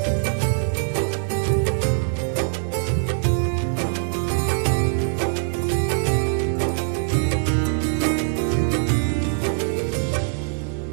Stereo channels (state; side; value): silent; left; digital silence